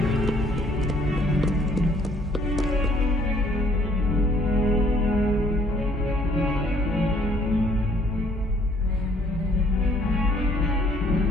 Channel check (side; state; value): both; normal; correlation 0.62